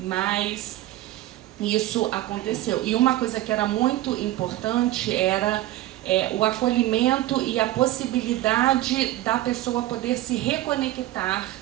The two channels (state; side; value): quieter; left; 15.4 dB